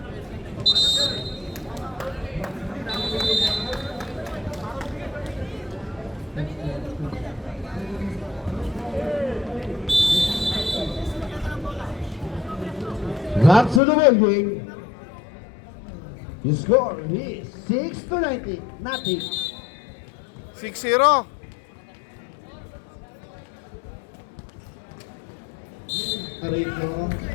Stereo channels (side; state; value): right; drops out; at 13.8 s